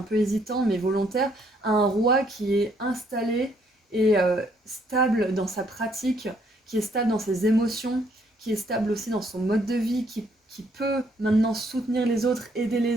peu hésitant mais volontaire, à un roi qui est installé et stable dans sa pratique, qui est stable dans ses émotions, qui est stable aussi dans son mode de vie, qui peut maintenant soutenir les autres, aider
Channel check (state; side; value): normal; both; correlation 0.68